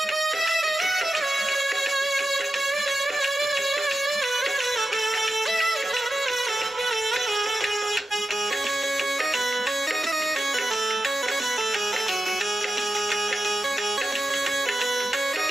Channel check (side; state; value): both; normal; correlation 0.90